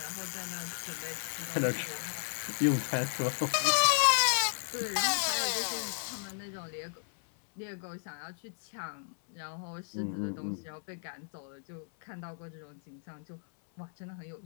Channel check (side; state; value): right; silent; 55 dB below the other